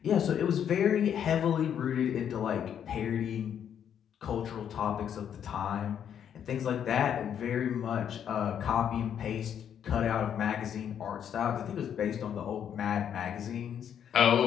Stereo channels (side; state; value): right; quieter; 8.9 dB